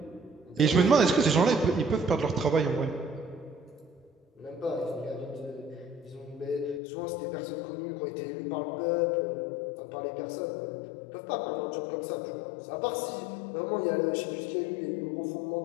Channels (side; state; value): right; drops out; at 6.8 s